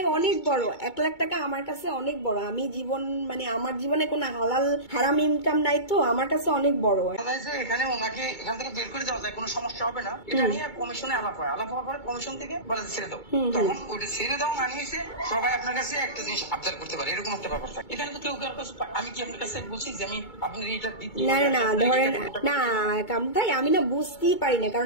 অনেক বড়। 1,00,000 টাকা আমার কাছে অনেক বড়। আমি জীবন মানে আমার জীবনে কোনো হালাল হারাম ইনকাম নাই, তো আমার কাছে অনেক বড়। এখানে ওনাকে এখান থেকে বের করে দেওয়া যায়, কোনো সমস্যা হবে না। এটা নিয়ে কমিশনে আলাপ হয়, আলাপ হওয়ার পরে কমিশন থেকে বলে ছেড়ে দাও। তখন ওইটা ছেড়ে দাও না নিয়েছে সবাই আপনার কাছে একটা জিনিস আবদার করতে পারে, এরকম একটা ব্যাপার থাকে। এখানে তো কেউ কারোর কাছে আমি কি আপনার কাছে বলছি যে আমি আপনার এটা না না না ধরেন না ভাই, আমি না বুঝতেই পারি না,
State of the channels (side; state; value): right; late; 2.2 ms